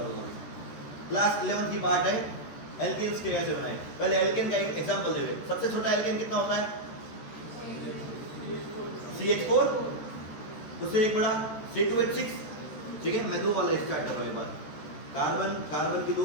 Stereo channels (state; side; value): late; right; 14 ms